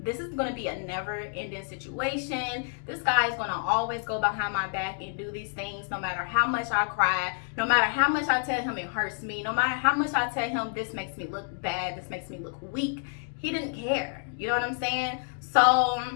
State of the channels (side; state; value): right; silent; 59 dB below the other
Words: this is going to be a never-ending situation. This guy is going to always go behind my back and do these things, no matter how much I cry, no matter how much I tell him it hurts me, no matter how much I tell him this makes me look bad, this makes me look weak. He didn't care. You know what I'm saying? So